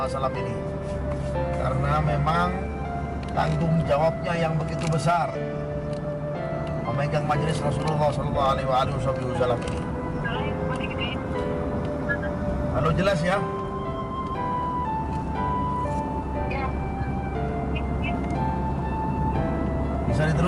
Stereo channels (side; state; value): both; identical; correlation 1.00